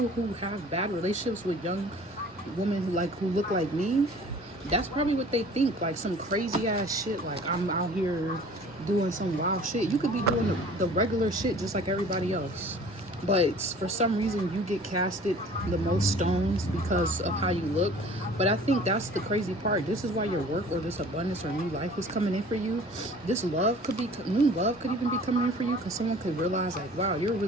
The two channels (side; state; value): both; normal; correlation 0.47